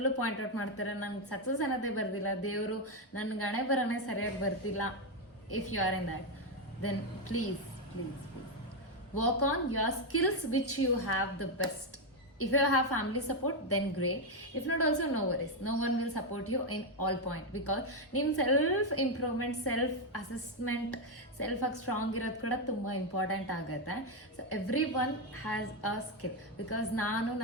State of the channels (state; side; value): normal; both; correlation 0.05